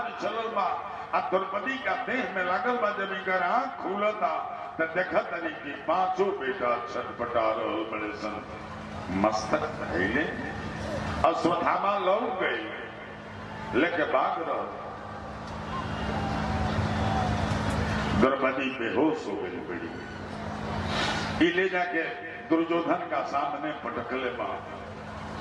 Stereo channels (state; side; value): identical; both; correlation 1.00